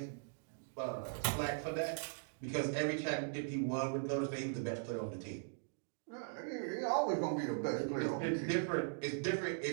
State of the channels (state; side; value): silent; left; digital silence